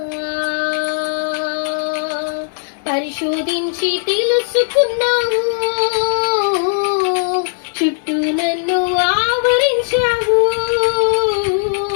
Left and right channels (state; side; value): silent; right; digital silence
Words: పరిశోధించి తెలుసుకున్నావు, చుట్టూ నన్ను ఆవరించావు,